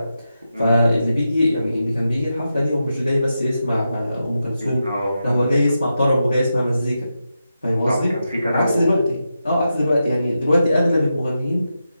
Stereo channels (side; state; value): both; inverted; correlation -0.88